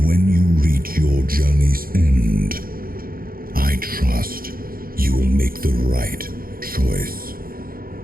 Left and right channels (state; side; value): late; left; 0.42 ms